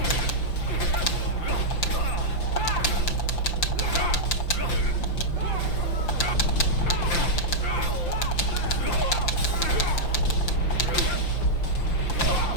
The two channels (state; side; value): late; right; 5.8 ms